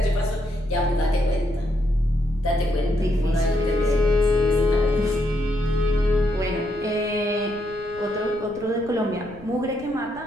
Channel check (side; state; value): left; noise; rumble, 21 dB below the sound